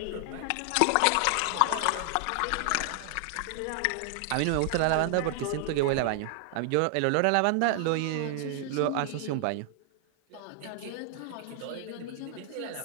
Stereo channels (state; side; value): different; both; correlation 0.00